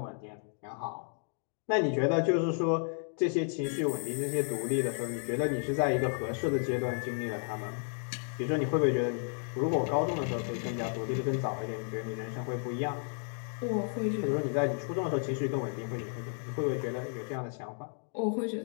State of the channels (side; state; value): right; silent; 56 dB below the other